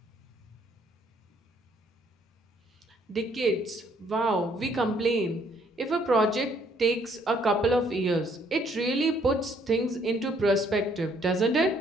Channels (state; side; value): normal; both; correlation 0.66